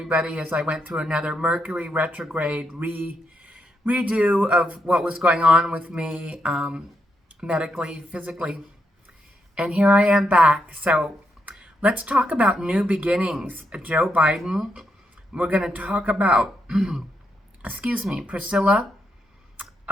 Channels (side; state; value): both; normal; correlation 0.80